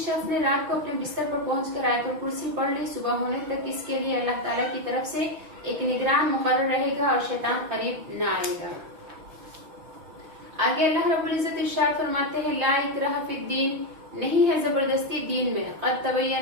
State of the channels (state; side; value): late; left; 6.2 ms